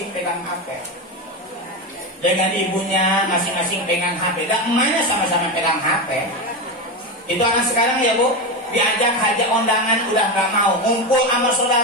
pegang HP. Dengan ibunya masing-masing pegang HP. Dan emaknya sama-sama pegang HP. Itu anak sekarang ya Bu, diajak hajak undangan udah nggak mau, ngumpul sama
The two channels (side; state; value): both; normal; correlation 0.16